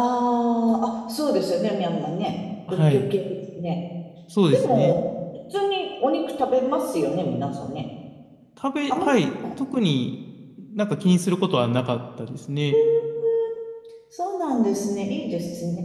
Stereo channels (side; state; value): both; identical; correlation 1.00